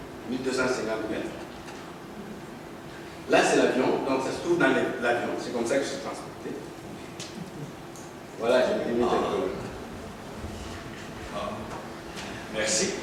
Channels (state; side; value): identical; both; correlation 1.00